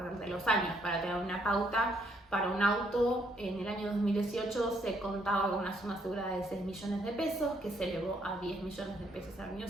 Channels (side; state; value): both; normal; correlation 0.71